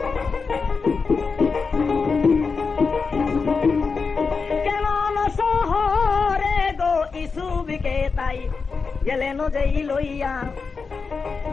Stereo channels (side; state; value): right; quieter; 4.9 dB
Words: ইসুফকে তাই গেলেন যেই লইয়া,